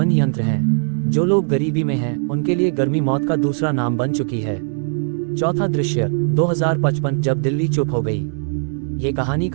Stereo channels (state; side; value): silent; left; 66 dB below the other